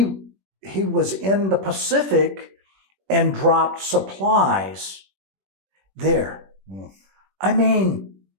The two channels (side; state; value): left; late; 21 ms